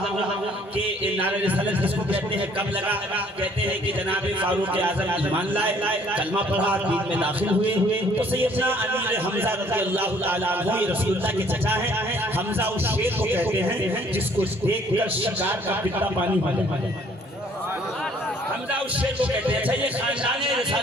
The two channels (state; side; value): normal; both; correlation 0.60